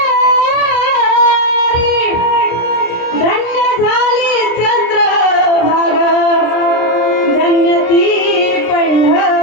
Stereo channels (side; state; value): right; late; 27 ms